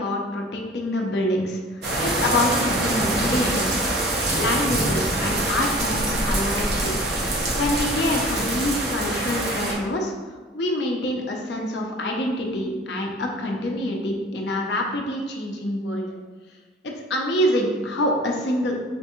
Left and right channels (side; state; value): both; normal; correlation 0.44